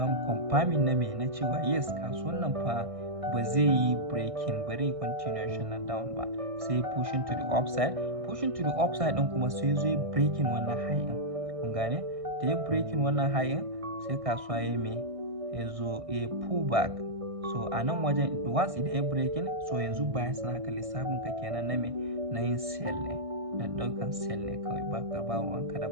mu confirming na me na cewa yes kasuwan nan fa ba zai yi breaking, bari continuation na down ba, sai pushing to the upside din kuma sai zo ya breaking wannan high din. Kun gane? Da ya breaking wannan high din sai kasuwa ya me ya zo ya pull back. So a nan wajen once idan ya breaking, so yanzu bias naka lissafin ka kenan na me na yin sell ne, da daukan sell ne kawai, ba ka ba ruwanka da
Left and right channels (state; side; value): late; left; 1.6 ms